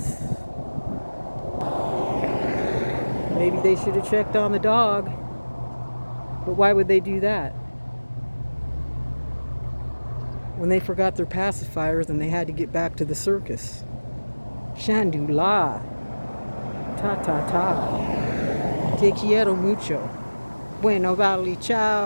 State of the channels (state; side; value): inverted; both; correlation -1.00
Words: Maybe they should have checked on the dog. But why would they do that? When they forgot their pacifiers and they had to get back to the circus. Shandula. Ta ta ta. Te quiero mucho. Bueno, vale,